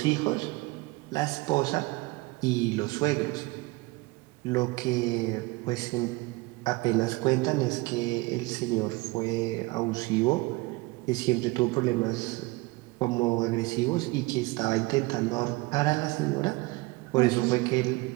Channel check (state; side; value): quieter; left; 23.3 dB